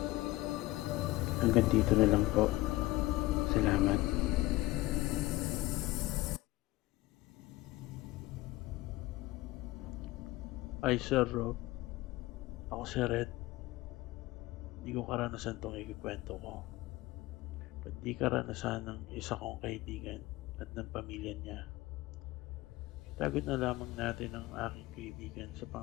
Hanggang dito na lang po. Salamat. Ay, Sir Rob. Ako si Red. Hindi ko karanasan itong ikikwento ko. Ba't di karanasan ng isa kong kaibigan at ng pamilya niya. Itagot na lamang natin ang aking kaibigan sa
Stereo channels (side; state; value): right; quieter; 18.9 dB